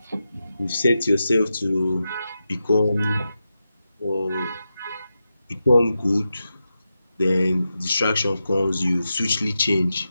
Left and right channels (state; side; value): inverted; both; correlation -0.89